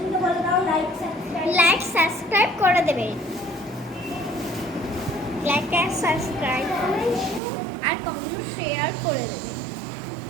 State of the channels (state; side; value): drops out; left; at 7.4 s